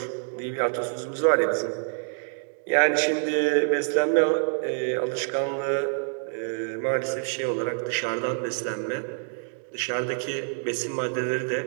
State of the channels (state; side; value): silent; left; 60 dB below the other